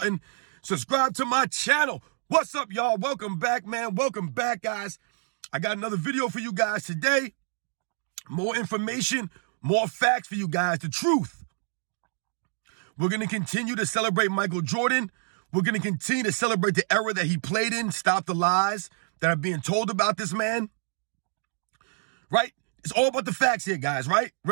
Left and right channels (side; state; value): left; silent; digital silence